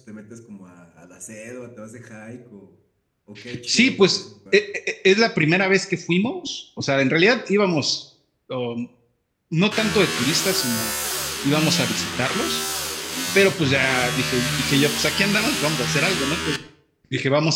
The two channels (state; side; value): identical; both; correlation 1.00